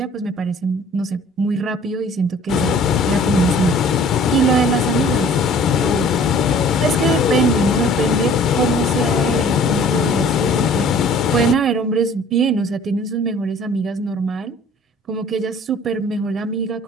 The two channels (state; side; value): normal; both; correlation 0.51